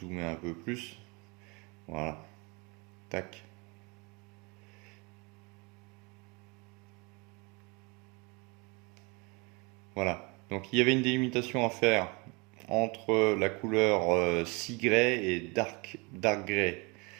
un peu plus, voilà, tac. Voilà, donc il y avait une délimitation à faire entre la couleur Sea et dark grey.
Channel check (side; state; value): left; quieter; 28.8 dB